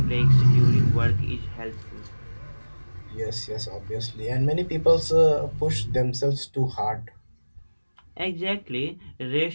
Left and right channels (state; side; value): inverted; both; correlation -1.00